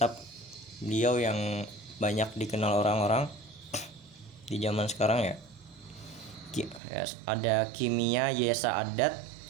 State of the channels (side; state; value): left; drops out; at 6.8 s